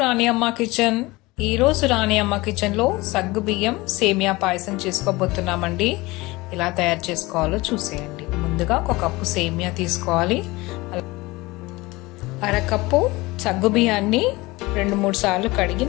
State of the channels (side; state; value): right; quieter; 21.7 dB